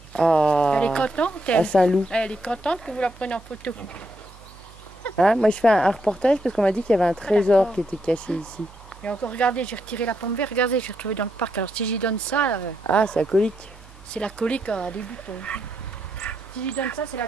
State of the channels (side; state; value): right; noise; hum, 21 dB below the sound